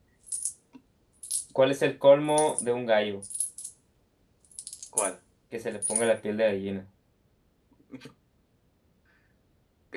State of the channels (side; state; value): both; identical; correlation 1.00